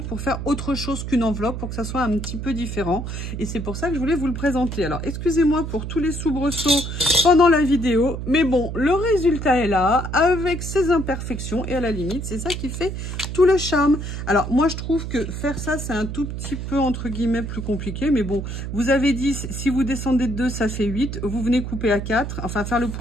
pour faire autre chose qu'une enveloppe, pour que ça soit un petit peu différent. Et c'est pour ça que je voulais vous le présenter. Alors, excusez-moi pour tous les soubresauts pendant la vidéo. Mais bon, le résultat est là, avec ses imperfections. Et à la limite, c'est ça qui fait tout le charme. Alors, moi, je trouve que faire ça, c'est un tout petit peu, entre guillemets, plus compliqué. Mais bon, vous avez 10, si vous descendez de 2, ça fait 8. Vous venez couper à 4, enfin faire le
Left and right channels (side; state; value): right; noise; hum, 6 dB below the sound